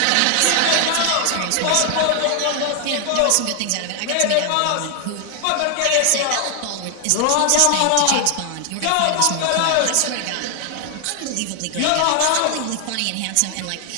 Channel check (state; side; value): different; both; correlation 0.00